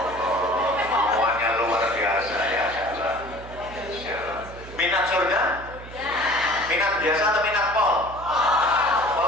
Minat surga? Minat biasa atau minat pol?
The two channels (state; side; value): noise; right; hum, 15 dB below the sound